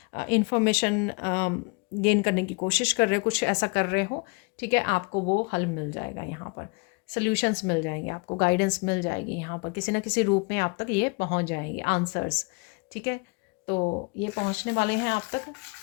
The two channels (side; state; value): right; quieter; 30.2 dB